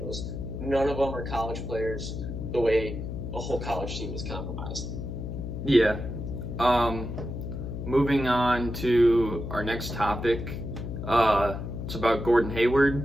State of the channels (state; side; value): noise; left; hum, 6 dB below the sound